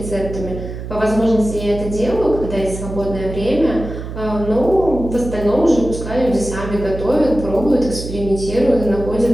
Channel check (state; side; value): noise; right; hum, 8 dB below the sound